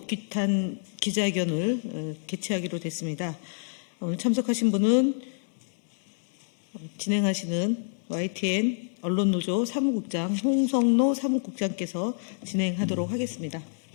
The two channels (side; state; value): right; silent; digital silence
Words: 규탄 기자회견을 개최하기로 됐습니다. 오늘 참석하신 분은 진행하시는 YTN 언론노조 사무국장 홍성노 사무국장께서 진행하도록 하겠습니다.